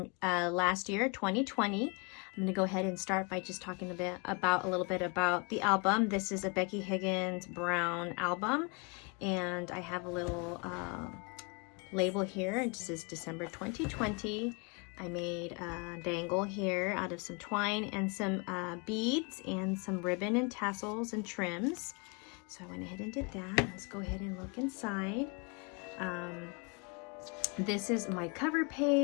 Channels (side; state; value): right; quieter; 31.7 dB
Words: last year, 2020. I'm going to go ahead and start by just talking a little bit about the album. This is a Becky Higgins Brown album, and I have a little label here. It says December 2020. I made a dangle here out of some twine and some beads and some ribbon and tassels and trims. So I went ahead and did that. Let's go ahead and look inside. This is my cover